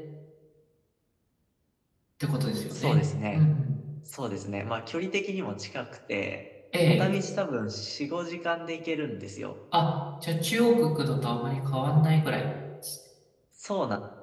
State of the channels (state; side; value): identical; both; correlation 1.00